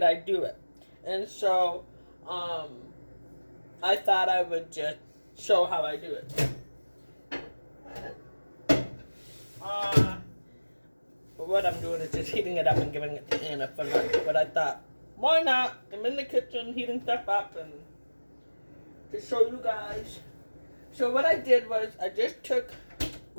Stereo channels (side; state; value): both; inverted; correlation -1.00